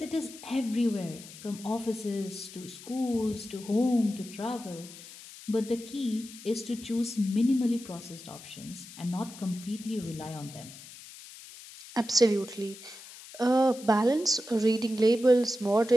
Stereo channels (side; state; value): left; noise; hiss, 16 dB below the sound